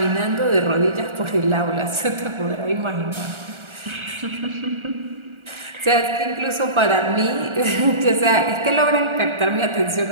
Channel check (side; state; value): left; late; 1.4 ms